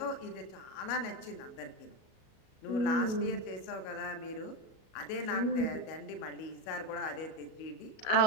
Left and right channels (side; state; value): right; late; 37 ms